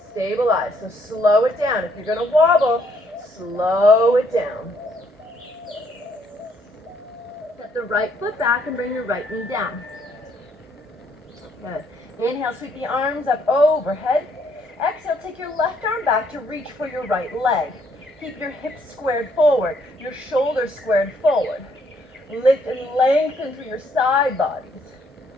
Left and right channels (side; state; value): both; normal; correlation 0.69